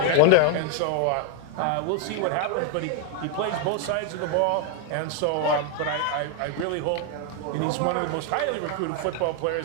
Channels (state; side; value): different; both; correlation 0.01